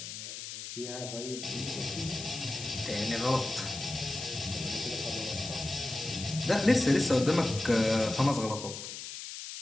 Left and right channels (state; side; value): noise; left; hiss, 9 dB below the sound